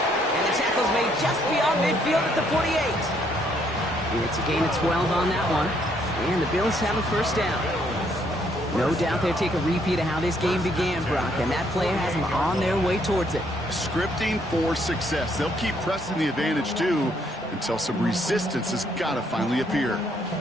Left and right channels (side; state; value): both; normal; correlation 0.70